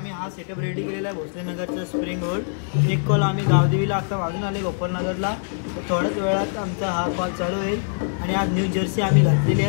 हा सेटअप रेडी केलेला आहे भोसलेनगरचा स्प्रिंग रोड. एक कॉल आम्ही गावदेवीला आता वाजून आले गोपालनगरला. तर थोड्याच वेळात आमचा हा कॉल चालू होईल. आणि आज न्यू जर्सी आम्ही घातलेली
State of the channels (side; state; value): right; silent; 63 dB below the other